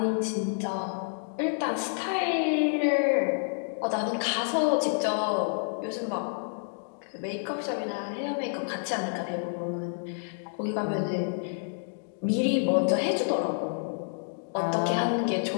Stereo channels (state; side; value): silent; right; digital silence